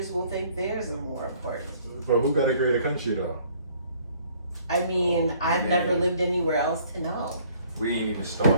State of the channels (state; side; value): inverted; both; correlation -0.59